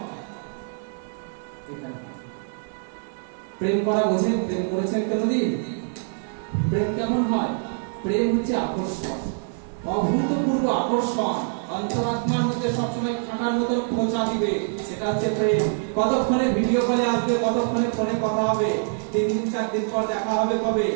এখানে। প্রেম করা বোঝেন? প্রেম করেছেন কোনদিন? প্রেম কেমন হয়? প্রেম হচ্ছে আকর্ষণ, অভূতপূর্ব আকর্ষণ, অন্তরাত্মার মধ্যে সবসময় কাঁটার মতো খোঁচা দিবে, সেটা হচ্ছে প্রেম। কতক্ষণে ভিডিও কলে আসবে, কতক্ষণে ফোনে কথা হবে, 3 দিন 4 দিন পর দেখা হবে কবে,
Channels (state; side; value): silent; left; digital silence